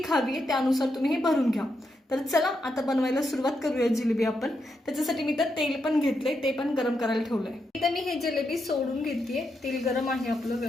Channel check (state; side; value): normal; both; correlation 0.83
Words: हवी आहे त्यानुसार तुम्ही हे भरून घ्या. तर चला आता बनवायला सुरुवात करूया जिलेबी आपण. त्याच्यासाठी मी तर तेल पण घेतले, ते पण गरम करायला ठेवलंय. इथं मी हे जिलेबी सोडून घेते. तेल गरम आहे आपलं